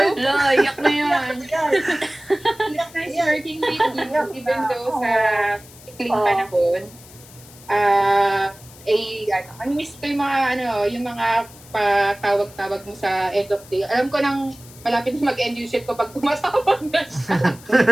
you. Iyak na yan. It's nice working with you, even though sa ikling panahon. Miss ko yung mga patawag-tawag mo sa end of day. Alam ko nang malapit na mag-end yung shift ko pag tumatawag na siya.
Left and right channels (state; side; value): noise; left; hiss, 21 dB below the sound